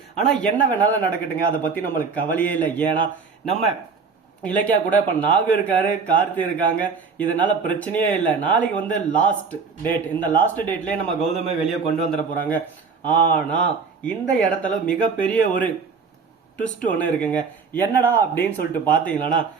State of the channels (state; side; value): quieter; left; 5.3 dB